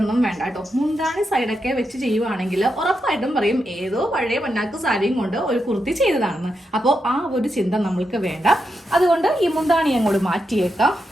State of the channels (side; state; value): both; normal; correlation 0.85